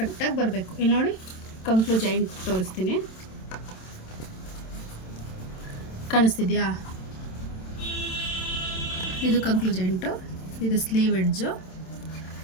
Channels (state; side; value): late; right; 27 ms